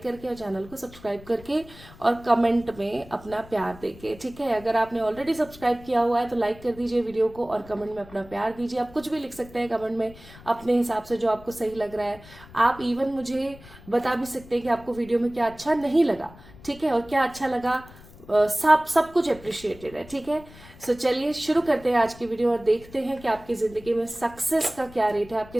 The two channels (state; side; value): noise; left; rumble, 20 dB below the sound